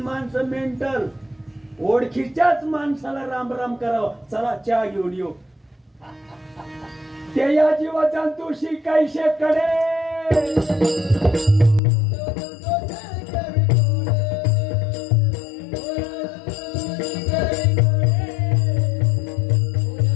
माणसं मेंटल ओळखीच्याच माणसाला राम राम करावं चला चहा घेऊन येऊ ते या जीवाचा तुशी कैसे कडे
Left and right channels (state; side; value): drops out; right; at 11.8 s